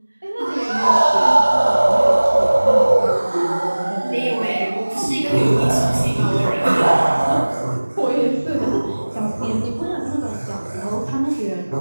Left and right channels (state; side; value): inverted; both; correlation -1.00